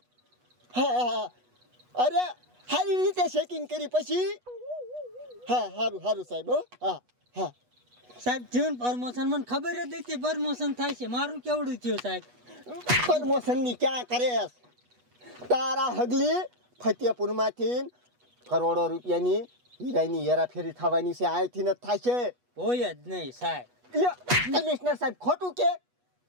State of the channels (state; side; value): late; left; 8.2 ms